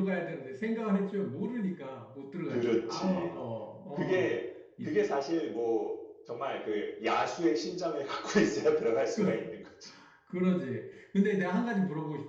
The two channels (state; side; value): identical; both; correlation 1.00